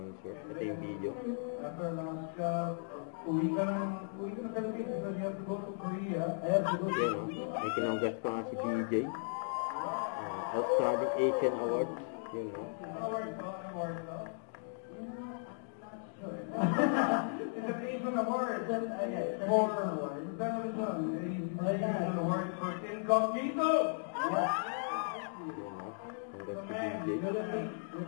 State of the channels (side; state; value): right; silent; digital silence